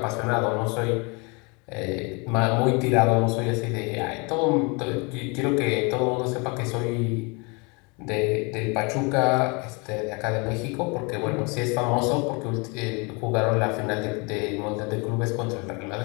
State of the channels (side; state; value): right; quieter; 30.5 dB